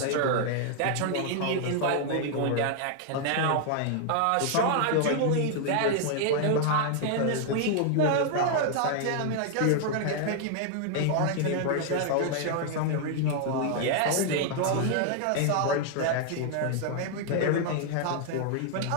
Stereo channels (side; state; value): both; different; correlation 0.00